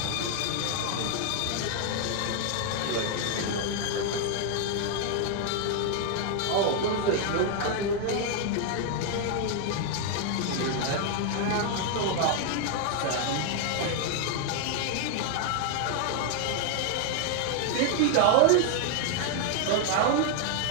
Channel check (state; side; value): different; both; correlation 0.00